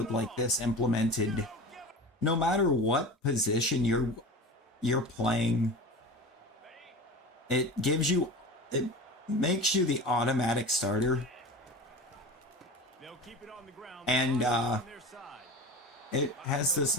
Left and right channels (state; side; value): normal; both; correlation 0.32